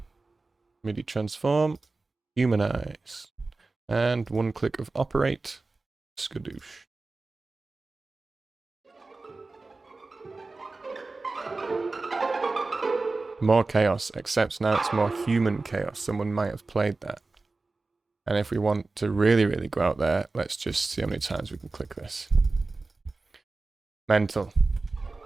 MIDI transform, humanize, and one click of operate, skadoosh. More chaos, except now it's more human chaos. Someone might have played that. And if we want to really, really go out there, let's just see how many times we can click this. Mental.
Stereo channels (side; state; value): left; quieter; 3.5 dB